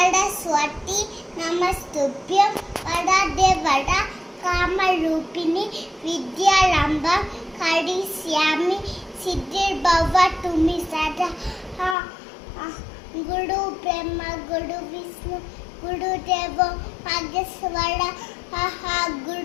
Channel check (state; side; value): drops out; right; at 12.0 s